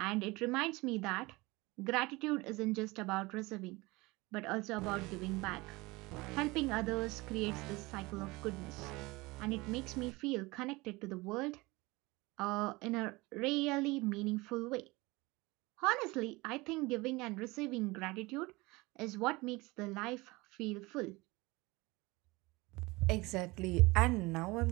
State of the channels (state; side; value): quieter; left; 22.9 dB